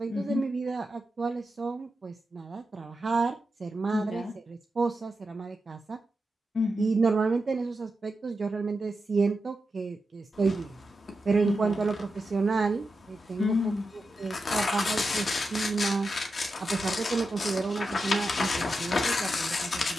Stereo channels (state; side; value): normal; both; correlation 0.89